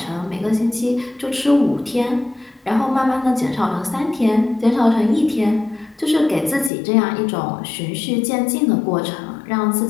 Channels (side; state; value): right; drops out; at 6.7 s